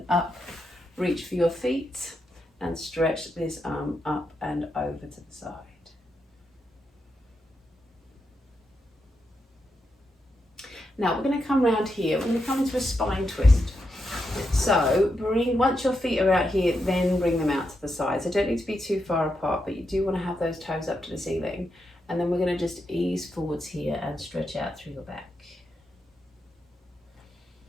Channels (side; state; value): both; normal; correlation 0.84